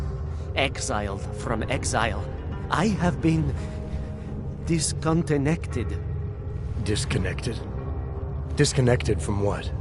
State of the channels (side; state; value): both; identical; correlation 1.00